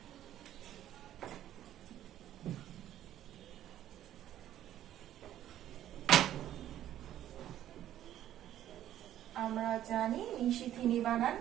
আমরা জানি নিশিথিনী বানান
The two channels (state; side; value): quieter; left; 12.0 dB